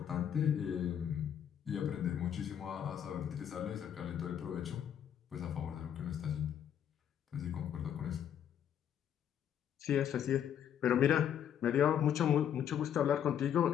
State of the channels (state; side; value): quieter; right; 9.3 dB